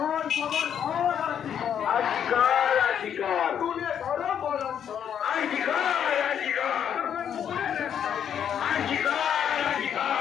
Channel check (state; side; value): quieter; right; 8.8 dB